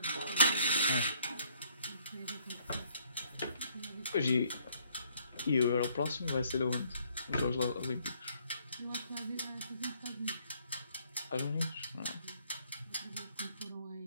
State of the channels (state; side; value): inverted; both; correlation -0.66